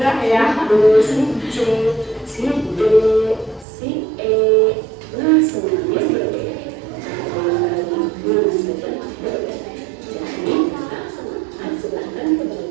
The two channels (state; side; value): drops out; left; at 3.7 s